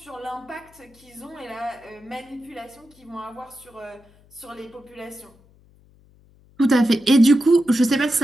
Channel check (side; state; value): left; noise; hum, 29 dB below the sound